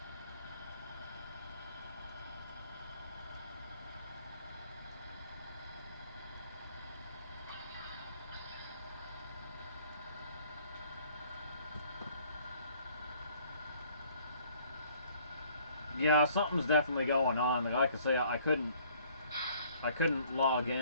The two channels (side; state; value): both; inverted; correlation -0.59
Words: Yeah, something's definitely going on. Like I say, I couldn't log